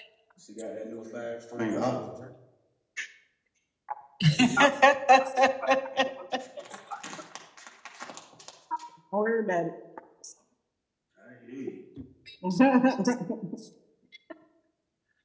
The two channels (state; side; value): identical; both; correlation 1.00